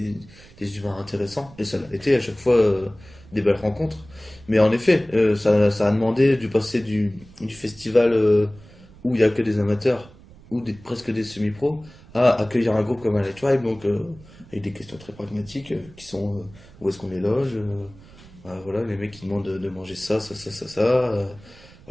humains intéressants. Et ça a été à chaque fois des belles rencontres. Mais en effet, ça a demandé du passer du festival où il n'y a que des amateurs, ou presque des semi-pros, à accueillir un groupe comme Highlight Tribe, donc avec des questions très pragmatiques qui sont où est-ce qu'on les loge, voilà, les mecs qui demandent de manger ça.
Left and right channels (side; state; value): right; noise; rumble, 22 dB below the sound